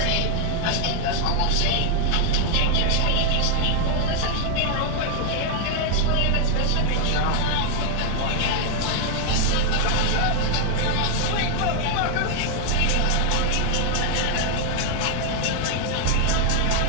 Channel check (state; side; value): different; both; correlation 0.00